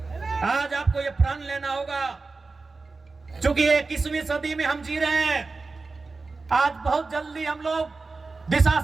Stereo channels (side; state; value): left; quieter; 3.9 dB